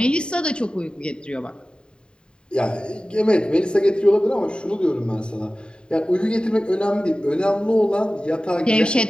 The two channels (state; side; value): late; right; 0.050 ms